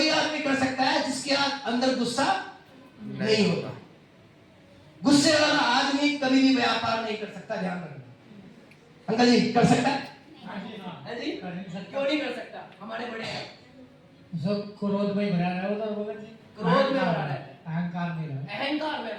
आदमी कर सकता है जिसके अंदर गुस्सा नहीं होता। गुस्से वाला आदमी कभी भी व्यापार नहीं कर सकता, ध्यान रखना। अंकल जी कर सकता है? हाँ जी, क्यों नहीं कर सकता? हमारे बड़े हैं सब क्रोध में भरा रहा होता है, क्रोध में भरा रहता है, अहंकार में रहता है, अहंकार में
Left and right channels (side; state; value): both; identical; correlation 1.00